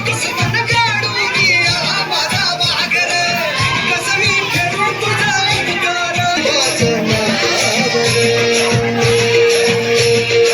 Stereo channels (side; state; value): both; identical; correlation 1.00